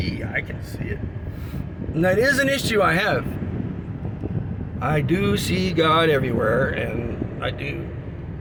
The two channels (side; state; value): both; identical; correlation 1.00